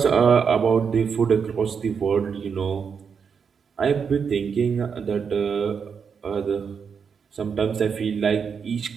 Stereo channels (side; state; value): left; quieter; 6.4 dB